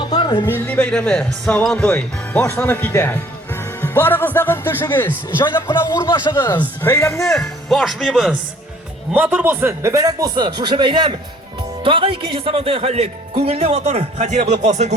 milliy bayrami Savantoy boshlanib ketadi. Barig'izdag'in tushingiz, joylab qilib o'rnashig'iz. Bayramni boshlaymiz. Motor bo'lsin, muborak bo'lsin. Shu bayram tog'a ikkinchi Savantoy xallik. Ko'ngilli motor xatira bo'lib qolsin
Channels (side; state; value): both; normal; correlation 0.57